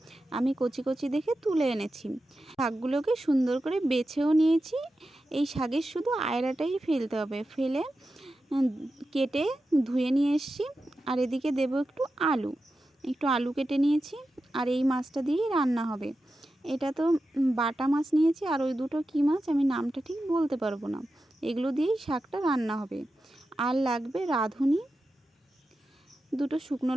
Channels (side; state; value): both; normal; correlation 0.91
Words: আমি কচি কচি দেখে তুলে এনেছি। শাকগুলোকে সুন্দর করে বেছেও নিয়েছি। এই শাকের শুধু আয়ড়াটাই ফেলতে হবে, ফেলে কেটে ধুয়ে নিয়ে এসেছি। আর এদিকে দেব একটু আলু কেটে নিয়েছি। আর এই মাছটা দিয়েই রান্না হবে। এটা তো বাটা মাছ নিয়েছি, আর ওই দুটো কী মাছ আমি নামটা ঠিক বলতে পারবো না। এগুলো দিয়েই শাকটা রান্না হবে। আর লাগবে রাঁধুনি, দুটো শুকনো